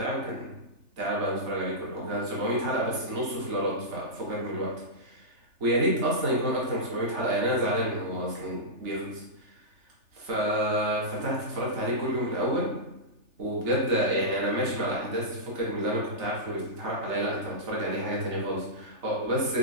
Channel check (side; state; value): left; late; 3.4 ms